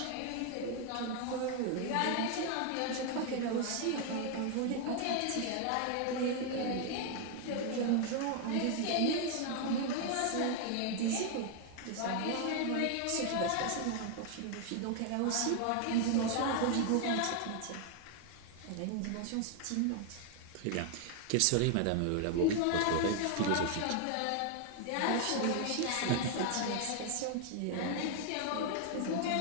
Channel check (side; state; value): both; different; correlation 0.00